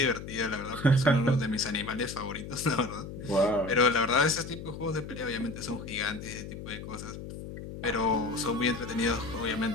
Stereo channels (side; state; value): left; noise; hum, 10 dB below the sound